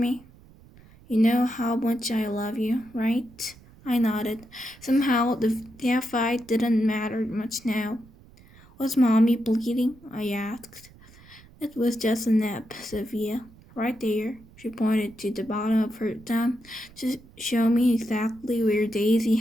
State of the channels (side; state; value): right; noise; rumble, 24 dB below the sound